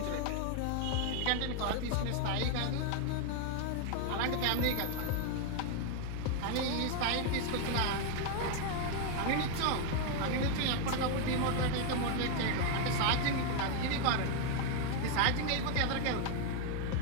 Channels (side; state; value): both; different; correlation 0.01